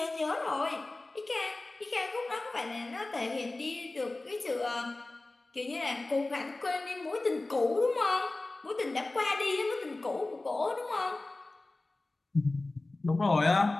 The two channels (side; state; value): right; quieter; 3.0 dB